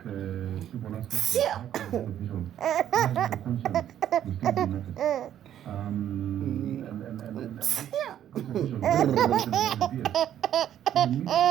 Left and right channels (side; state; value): left; quieter; 10.8 dB